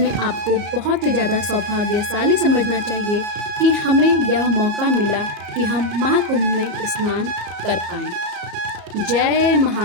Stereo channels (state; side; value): late; left; 34 ms